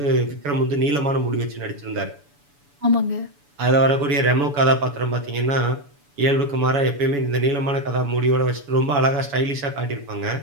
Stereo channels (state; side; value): late; left; 7.0 ms